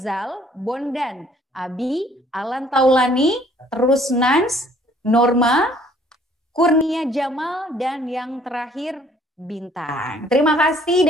Bondan, Abi, Alan Taulani, terus Nans, Norma, Kurnia Jamal, dan yang terakhir Bintang. Terima kasih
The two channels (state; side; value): normal; both; correlation 0.60